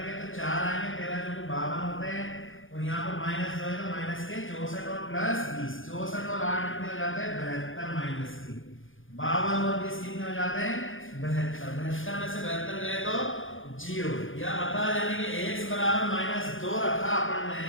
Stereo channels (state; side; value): late; right; 0.58 ms